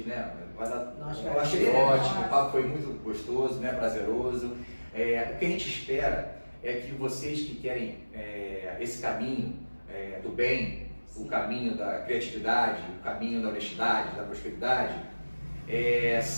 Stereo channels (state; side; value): inverted; both; correlation -1.00